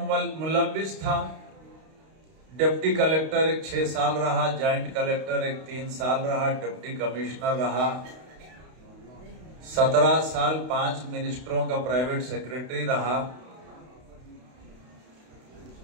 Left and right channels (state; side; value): late; left; 32 ms